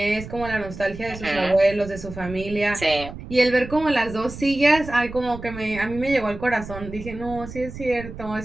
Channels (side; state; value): right; noise; rumble, 12 dB below the sound